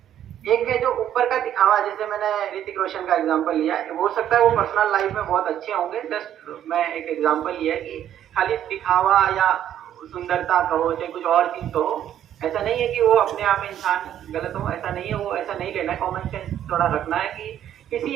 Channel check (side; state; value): left; quieter; 10.7 dB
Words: एक है जो ऊपर का दिखावा, जैसे मैंने ऋतिक रोशन का एग्जांपल लिया, हो सकता है वो पर्सनल लाइफ में बहुत अच्छे होंगे, जस्ट मैं एक एग्जांपल लिया कि खाली दिखावा या सुंदरता कहो चाहे कुछ और चीज कहो, ऐसा नहीं है कि वो अपने आप में इंसान गलत हो, ऐसा नहीं है, वो ऐसा नहीं लेना है। कॉमन सेंस थोड़ा रखना है कि